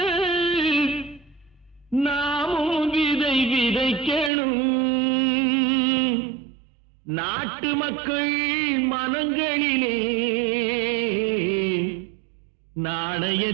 நாமும் விதை விதைக்கணும். நாட்டு மக்கள் மனங்களிலே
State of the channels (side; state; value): left; drops out; at 4.3 s